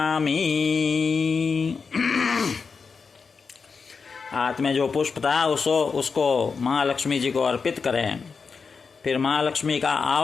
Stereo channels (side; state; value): right; quieter; 5.2 dB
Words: हाथ में जो पुष्प था उसको महालक्ष्मी जी को अर्पित करें। फिर महालक्ष्मी का